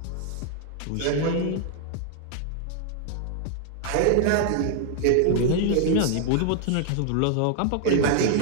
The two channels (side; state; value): both; different; correlation 0.00